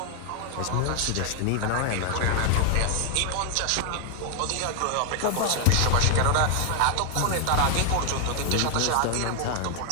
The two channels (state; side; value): different; both; correlation 0.00